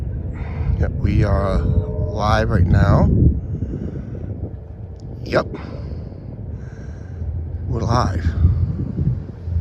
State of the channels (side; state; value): both; identical; correlation 1.00